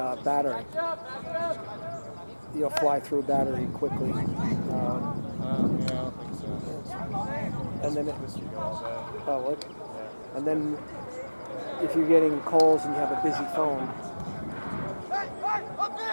battery. You'll fly through battery quickly. Yeah, I don't think so. And then This should go all day. oh, look. Yeah. And then if you're getting calls and you have a busy phone,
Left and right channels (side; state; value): both; inverted; correlation -1.00